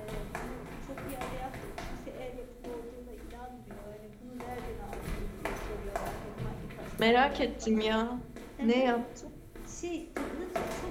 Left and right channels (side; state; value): both; identical; correlation 1.00